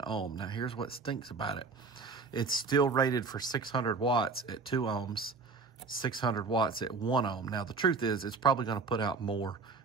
ohm. Now, here's what stinks about it. It's still rated for 600 watts at 2 ohms, 600 watts at 1 ohm. Now, the truth is, it's probably going to put out more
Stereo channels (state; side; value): quieter; left; 4.4 dB